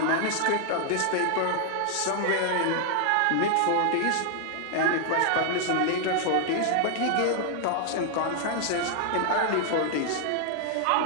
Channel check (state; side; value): different; both; correlation 0.00